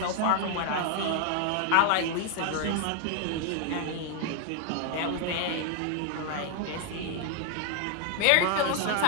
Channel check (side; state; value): both; different; correlation 0.00